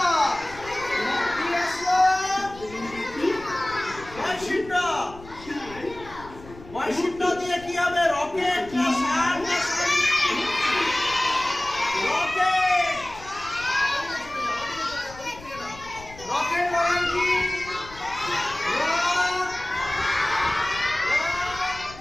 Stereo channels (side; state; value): left; noise; rumble, 18 dB below the sound